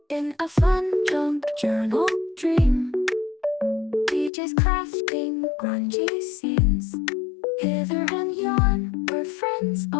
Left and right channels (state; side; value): drops out; right; at 4.3 s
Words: In a fun junk journal dream, DJ's crafting grungy scenes. Hither and yon, where friends